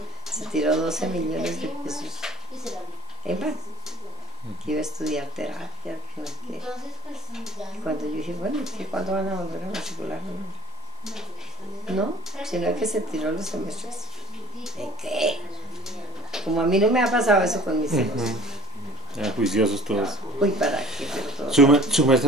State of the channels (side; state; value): both; normal; correlation 0.42